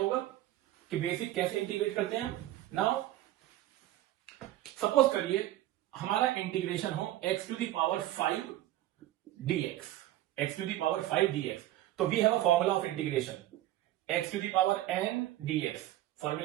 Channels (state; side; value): quieter; left; 14.5 dB